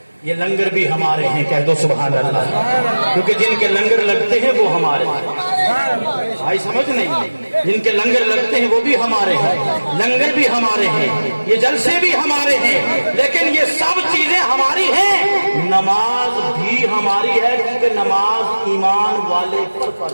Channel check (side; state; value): both; inverted; correlation -1.00